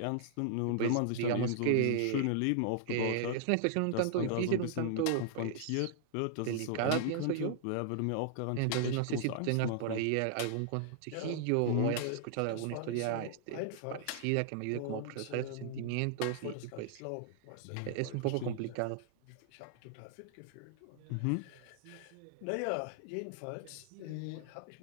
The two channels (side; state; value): both; different; correlation -0.01